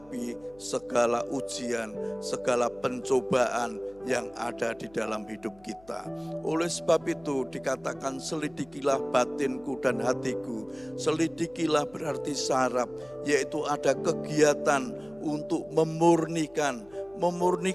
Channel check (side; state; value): left; noise; hum, 26 dB below the sound